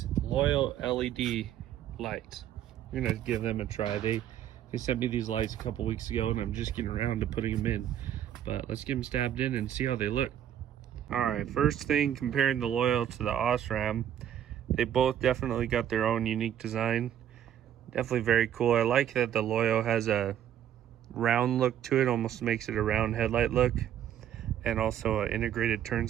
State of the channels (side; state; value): left; quieter; 10.5 dB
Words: LOYO LED lights. We're going to give them a try. They sent me these lights a couple weeks ago and I'm just getting around to putting them in. But let's get them stabbed in and see how they look. Alright, first thing, comparing the LOYO to the OSRAM, they both definitely got their own unique design. Definitely very cool. I like that the LOYO has a round look to it, almost makes it a round headlight look. And also an integrated turn